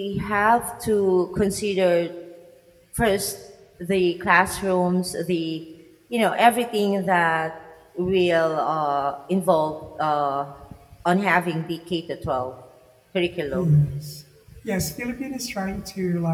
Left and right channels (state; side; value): identical; both; correlation 1.00